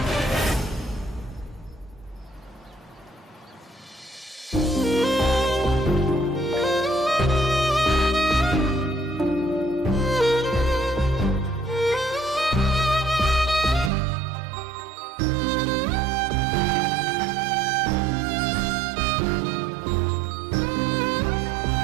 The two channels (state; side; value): drops out; left; at 13.9 s